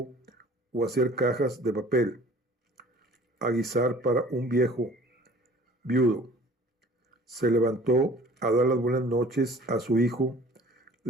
o hacer cajas de papel, aguisar para un viejo viudo. Se levantó a dar las buenas noches a su hijo,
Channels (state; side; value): normal; both; correlation 0.49